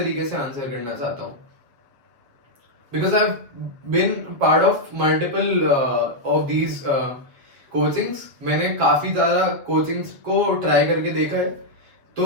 से आंसर करना चाहता हूँ because I been part of multiple of these coachings. मैंने काफी ज्यादा कोचिंग्स को ट्राई करके देखा है,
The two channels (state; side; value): late; left; 7.5 ms